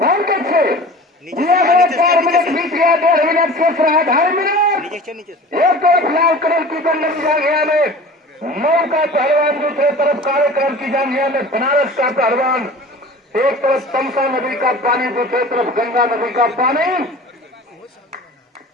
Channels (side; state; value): both; normal; correlation 0.39